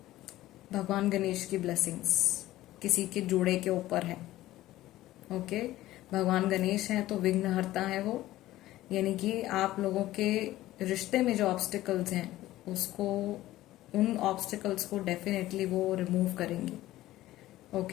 भगवान गणेश की ब्लेसिंग्स किसी के जोड़े के ऊपर है, ओके। भगवान गणेश है तो विघ्नहर्ता है वो, यानी कि आप लोगों के रिश्ते में जो ऑब्स्टिकल्स हैं उसको, उन ऑब्स्टिकल्स को डेफिनेटली वो रिमूव करेंगे,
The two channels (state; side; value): quieter; right; 15.7 dB